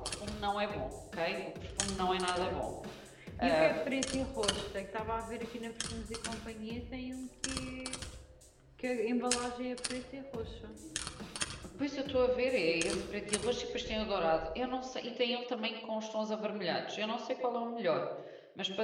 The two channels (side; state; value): both; identical; correlation 1.00